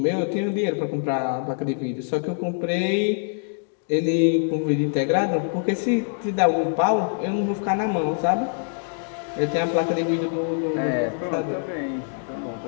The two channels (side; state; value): right; silent; digital silence